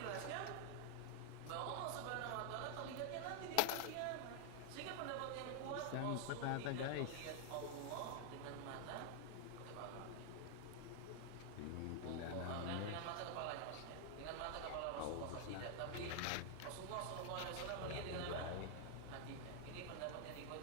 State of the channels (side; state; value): both; different; correlation 0.00